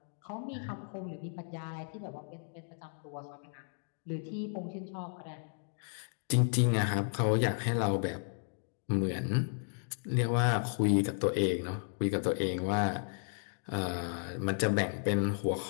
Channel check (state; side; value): silent; right; digital silence